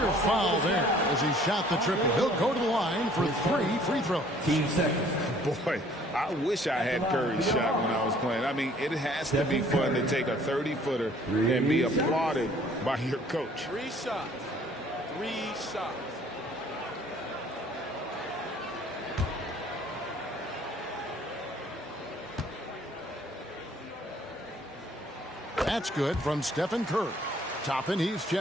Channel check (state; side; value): normal; both; correlation 0.56